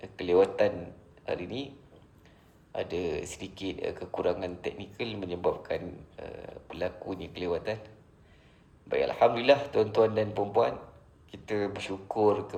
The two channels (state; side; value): identical; both; correlation 1.00